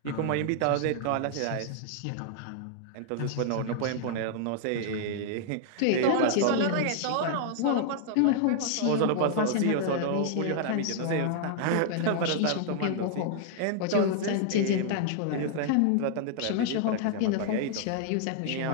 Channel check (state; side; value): different; both; correlation -0.01